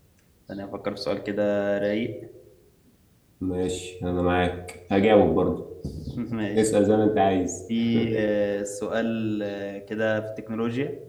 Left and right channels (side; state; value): both; identical; correlation 1.00